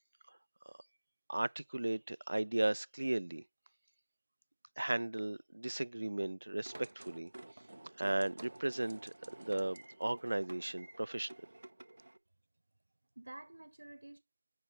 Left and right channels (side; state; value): both; inverted; correlation -1.00